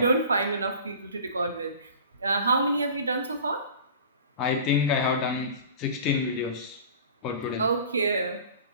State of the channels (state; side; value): inverted; both; correlation -0.41